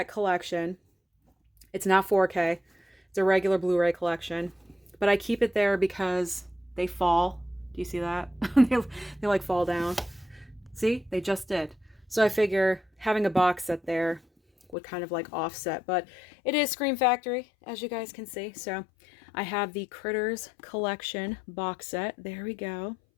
collection. It's not 4K. It's a regular Blu-ray collection, but I keep it there because they fall. Do you see that? they like fall down. See, they just did. So I figure having a box set there would kind of like offset, but it is Scream Factory, as you guys can see. So I have the Critters collection box set. There we go.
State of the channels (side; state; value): right; drops out; at 14.8 s